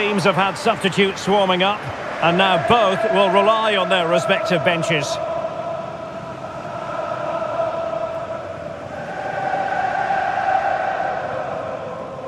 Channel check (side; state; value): both; identical; correlation 1.00